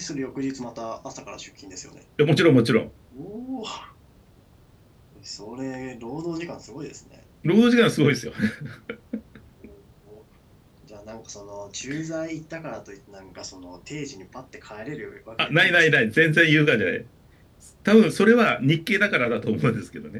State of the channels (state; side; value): identical; both; correlation 1.00